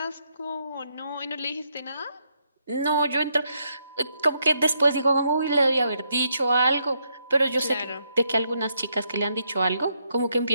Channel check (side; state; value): both; inverted; correlation -0.77